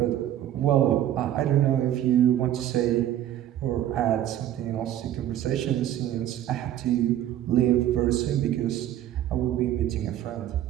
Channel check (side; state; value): left; quieter; 12.0 dB